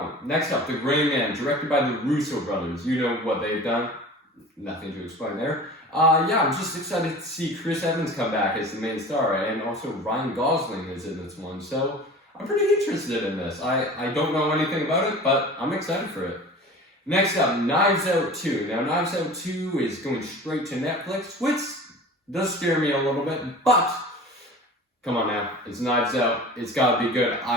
one. Next up, The Gray Man, directed by the Russo brothers. You know what they've done. Nothing to explain there. Yeah, I'm just excited to see Chris Evans come back as the main star. And also Ryan Gosling is in this one. So I'm pretty interested in this. I don't know anything about it, but I'm excited for it. Next up, Knives Out 2. Now, Knives Out 2 is going straight to Netflix, which does scare me a little bit, but come on now, it's Knives Out. It's got to be good.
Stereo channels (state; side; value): normal; both; correlation 0.39